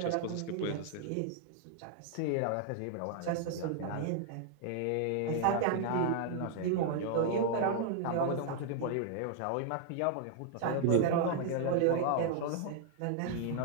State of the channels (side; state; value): both; different; correlation 0.00